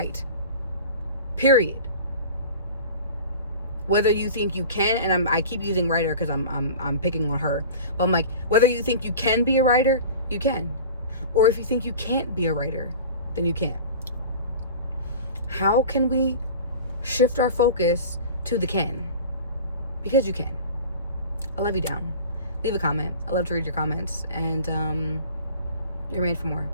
Period. Whether you think you can, and I keep using writer because I'm picking on her, but I'm like, whether you think you can be a writer, you can. Or if you think you can't be a writer, then you can't. How can we shift our focus to the can? Because you can. I love you down. Leave a comment. I love to read your comments. And you're made for more.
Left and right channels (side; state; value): both; inverted; correlation -0.38